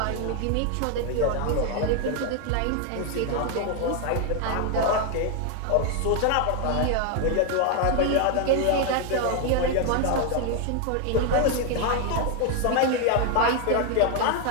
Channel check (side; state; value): both; different; correlation 0.00